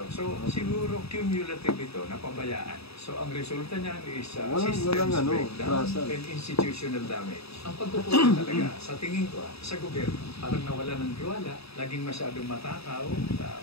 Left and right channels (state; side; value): late; right; 0.78 ms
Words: So, siguro cumulative ito, napabayaan. So, ang resulta niyan is systems breakdown and institutional damage. Ang pagkukulang talaga, sa tingin ko, sa gobyerno, parang nawala ng tiwala, laging masyadong matakaw sa